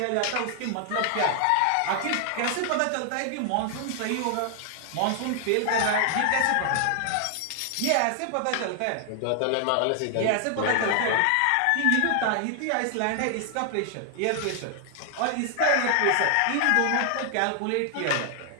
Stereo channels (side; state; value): both; different; correlation 0.00